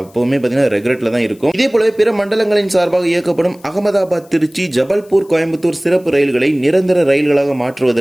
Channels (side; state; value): left; noise; hiss, 29 dB below the sound